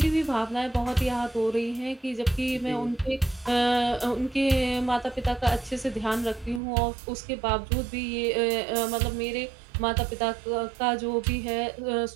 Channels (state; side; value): drops out; left; at 6.6 s